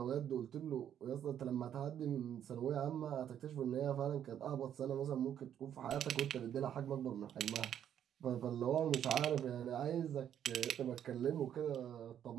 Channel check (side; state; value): left; quieter; 9.8 dB